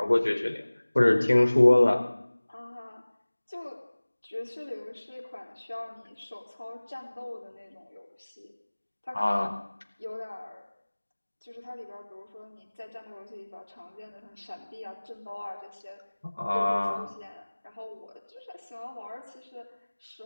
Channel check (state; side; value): inverted; both; correlation -1.00